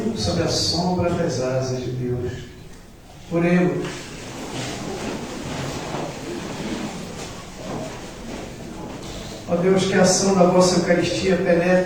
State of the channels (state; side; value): identical; both; correlation 1.00